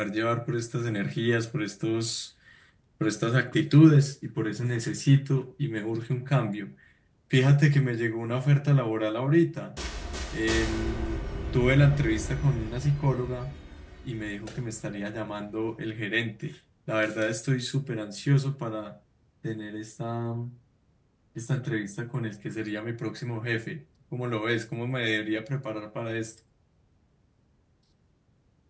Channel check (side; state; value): both; identical; correlation 1.00